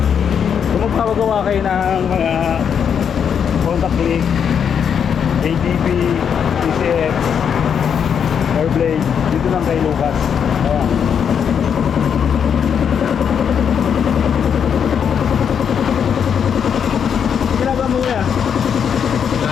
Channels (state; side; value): quieter; right; 7.6 dB